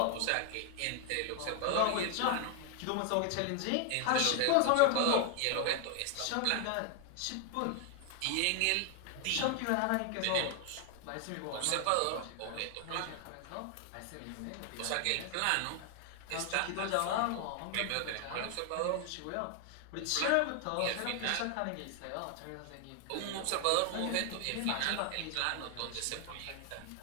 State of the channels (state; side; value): different; both; correlation 0.00